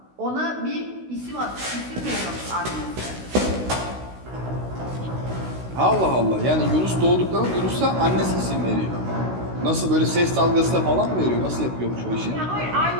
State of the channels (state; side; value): late; left; 16 ms